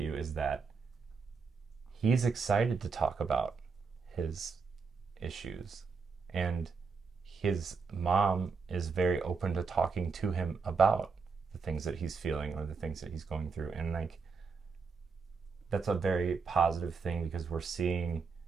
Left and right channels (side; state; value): left; quieter; 5.1 dB